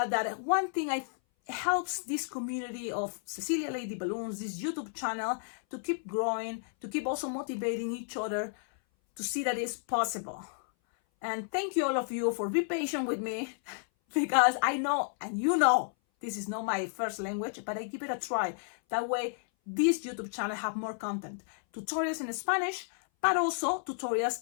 that one thing helps this community of Cecilia Lady Balloons, this YouTube channel, to keep growing, to keep also motivating each other to see that it's possible. And thank you all of you for being patient with me, because I know, and you know, this is not my first language, but I give it a try. That way, this YouTube channel have more content. Tutorials in Spanish, but also tutorials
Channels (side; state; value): right; silent; 57 dB below the other